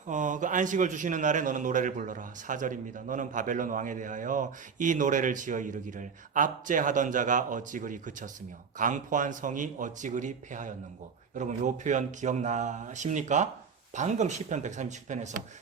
그 안식을 주시는 날에 너는 노래를 불러라. 4절입니다. 너는 바벨론 왕에 대하여 이 노래를 지어 이르기를 압제하던 자가 어찌 그리 그쳤으며 강포한 성이 어찌 그리 패하였는고. 여러분 요 표현 기억나십니까? 방금 시편 137편에서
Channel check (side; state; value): left; quieter; 6.1 dB